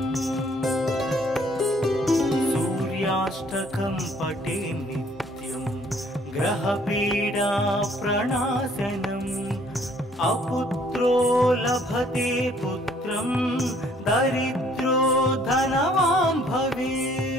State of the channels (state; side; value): normal; both; correlation 0.61